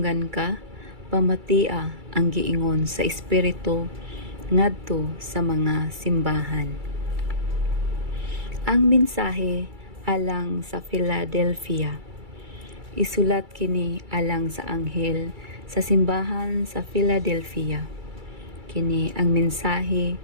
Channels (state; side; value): late; left; 2.3 ms